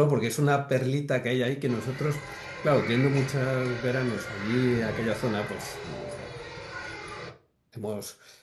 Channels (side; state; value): both; identical; correlation 1.00